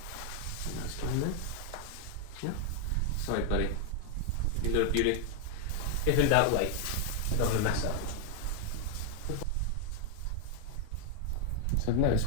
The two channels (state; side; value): different; both; correlation 0.00